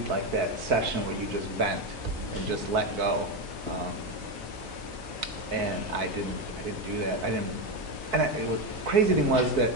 like that session where you just vent and just let go. And I didn't do that. And the crazy thing was that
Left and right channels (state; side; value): normal; both; correlation 0.12